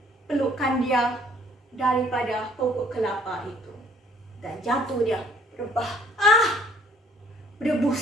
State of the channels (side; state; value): both; normal; correlation 0.59